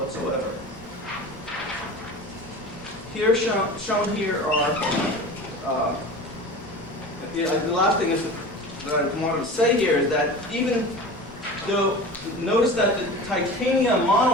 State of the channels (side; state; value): both; normal; correlation 0.34